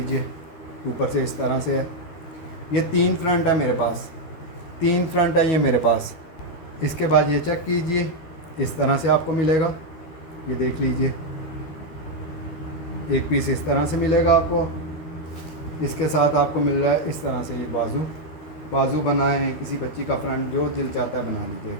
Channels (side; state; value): right; late; 12 ms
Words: ऊपर से इस तरह से है। ये 3 फ्रंट है मेरे पास, 3 फ्रंट है ये मेरे पास। इसके बाद ये चेक कीजिए, इस तरह से आपको मिलेगा, ये देख लीजिए। एक पीस इस तरह से मिलेगा आपको। इसके साथ आपको मिल रहा है इस तरह से ये बाजू बनाए, किसी बच्ची का फ्रंट जो दिल चाहता है बना